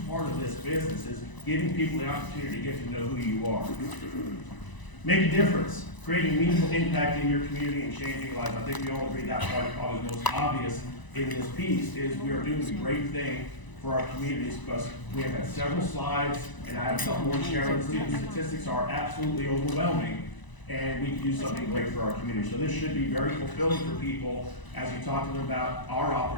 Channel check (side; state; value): right; late; 1.0 ms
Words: part of this business, is giving people the opportunity to get to know who you are. Make a difference, creating meaningful impact in your community and changing lives. I think we all agree that part is probably the most obvious in this piece, is we are doing a great thing for our communities, because we have had several slides, and I have some more sharing. Student statistics are absolutely overwhelming, and we can do something great for our community. So this should be very fulfilling for people as you talk to them about our